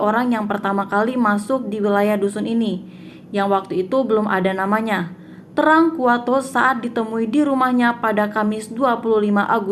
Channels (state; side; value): identical; both; correlation 1.00